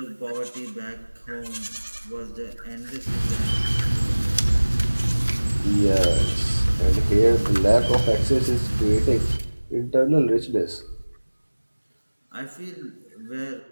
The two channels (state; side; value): inverted; both; correlation -1.00